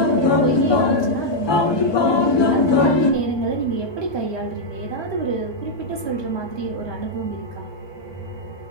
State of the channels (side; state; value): right; late; 1.2 ms